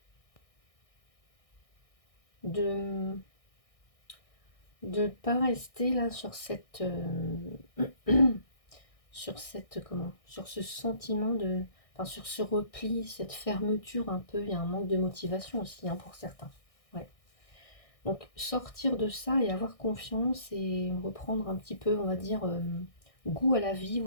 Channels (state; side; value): late; right; 1.6 ms